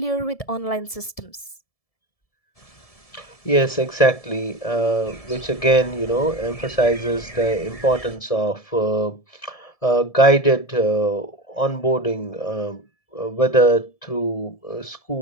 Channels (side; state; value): right; late; 1.7 ms